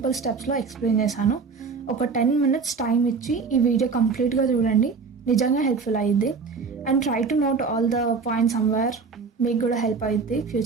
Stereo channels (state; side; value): quieter; left; 5.0 dB